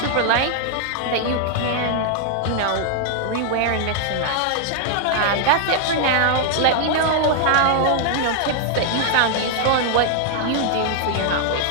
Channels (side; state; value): both; different; correlation 0.00